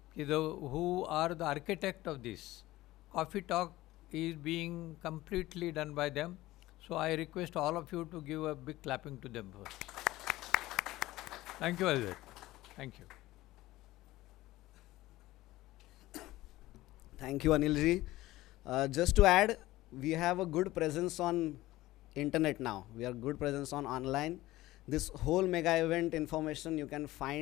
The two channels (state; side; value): quieter; right; 17.3 dB